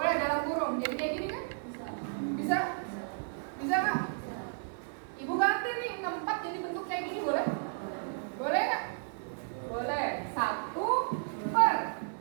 dalam kurung. Jadi kayak gini kan? Bisa? Bisa nggak? Ibu ganti nih 64 jadi bentuk kayak gini, boleh? Boleh nggak? Boleh. 1 per.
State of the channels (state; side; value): silent; left; 56 dB below the other